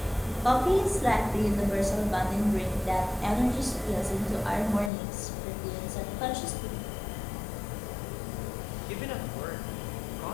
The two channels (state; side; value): drops out; right; at 4.9 s